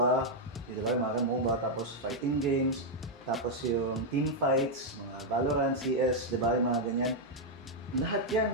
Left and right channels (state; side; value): normal; both; correlation -0.02